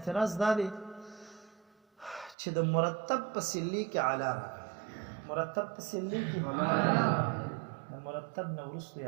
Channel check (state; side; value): drops out; left; at 2.4 s